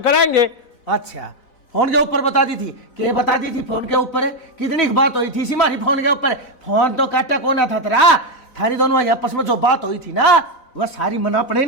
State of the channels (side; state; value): right; late; 4.0 ms